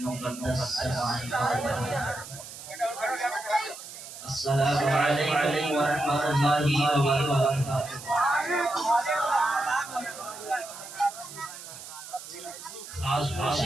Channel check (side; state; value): right; noise; hiss, 13 dB below the sound